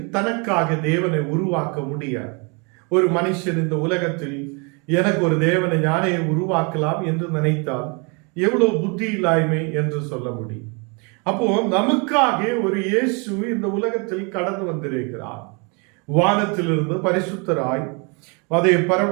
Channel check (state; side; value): quieter; left; 32.9 dB